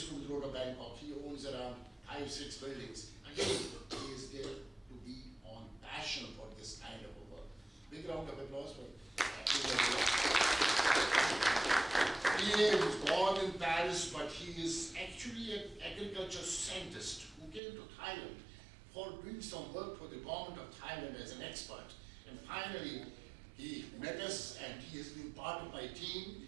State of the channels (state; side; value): drops out; left; at 17.6 s